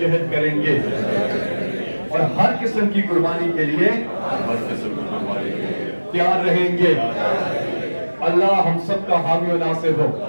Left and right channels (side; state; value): both; inverted; correlation -1.00